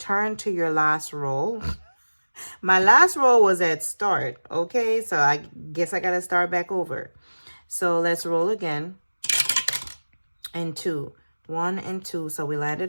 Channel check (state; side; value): inverted; both; correlation -1.00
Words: your last roll. My last roll was at start, okay? So I guess I gotta start back over. So let's roll again. And 2. 1 and 2. So we